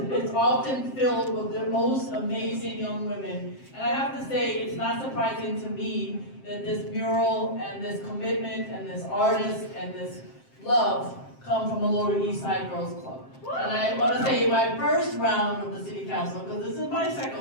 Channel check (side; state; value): right; late; 7.6 ms